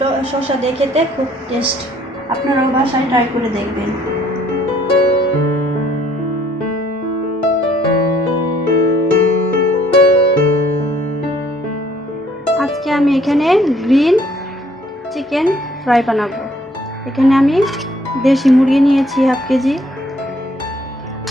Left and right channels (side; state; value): both; normal; correlation 0.62